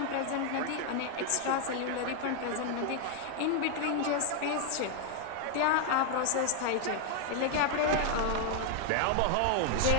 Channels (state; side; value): different; both; correlation 0.00